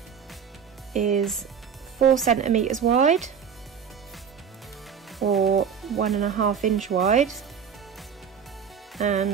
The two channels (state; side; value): quieter; left; 7.3 dB